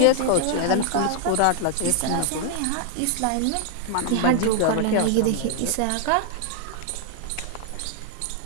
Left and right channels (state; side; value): different; both; correlation 0.00